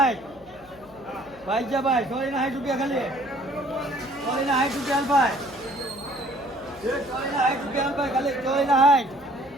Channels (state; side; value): noise; left; hum, 25 dB below the sound